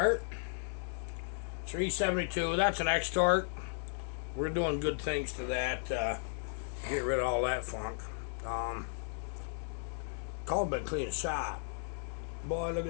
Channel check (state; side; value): silent; right; digital silence